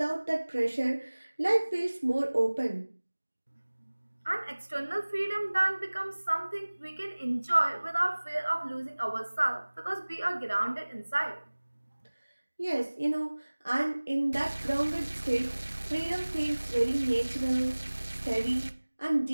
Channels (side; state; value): both; inverted; correlation -1.00